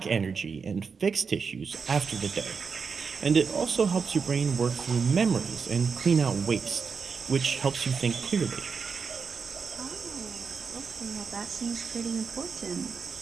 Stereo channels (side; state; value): left; quieter; 5.5 dB